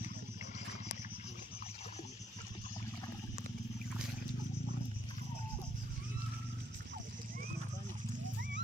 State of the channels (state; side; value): normal; both; correlation 0.73